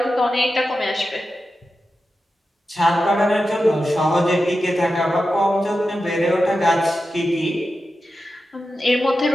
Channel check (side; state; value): both; normal; correlation 0.91